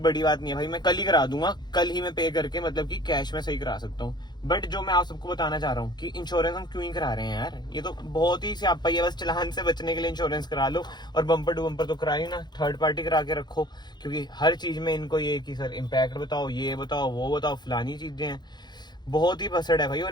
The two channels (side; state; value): right; late; 0.21 ms